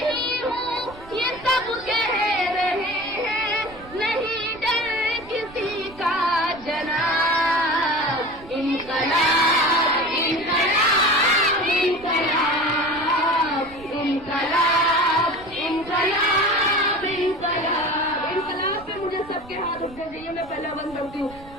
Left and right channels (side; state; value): right; noise; rumble, 20 dB below the sound